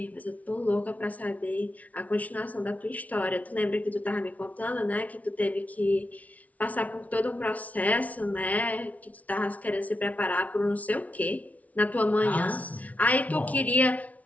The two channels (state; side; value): late; right; 0.070 ms